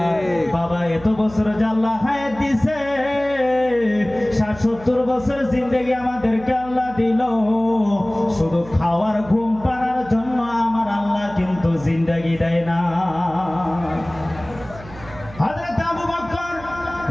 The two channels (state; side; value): noise; right; hum, 18 dB below the sound